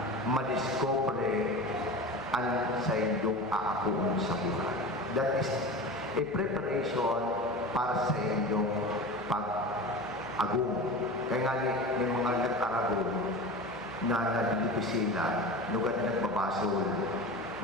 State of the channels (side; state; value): left; noise; hum, 23 dB below the sound